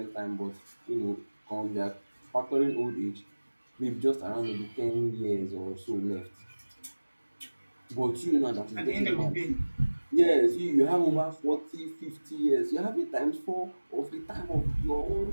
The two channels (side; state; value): both; inverted; correlation -1.00